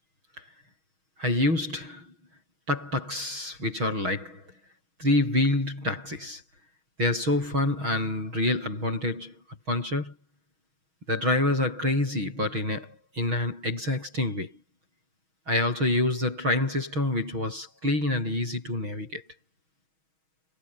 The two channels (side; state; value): left; late; 6.3 ms